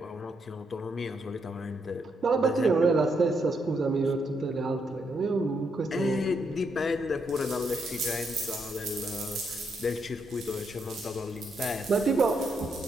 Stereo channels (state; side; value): normal; both; correlation 0.78